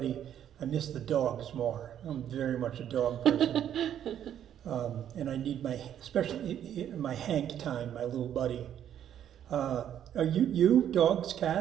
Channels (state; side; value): quieter; left; 10.1 dB